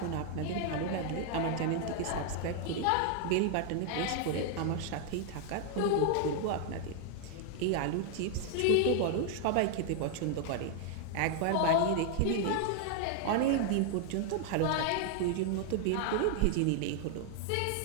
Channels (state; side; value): different; both; correlation 0.00